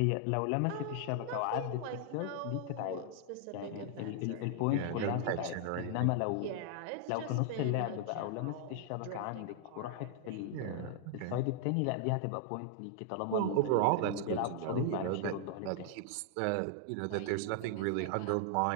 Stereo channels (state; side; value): different; both; correlation 0.00